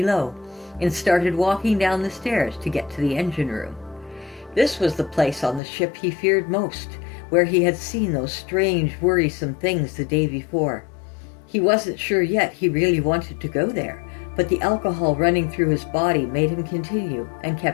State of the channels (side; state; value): right; drops out; at 5.6 s